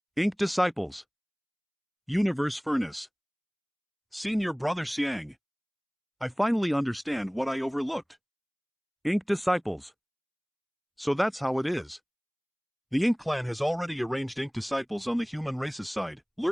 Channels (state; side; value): identical; both; correlation 1.00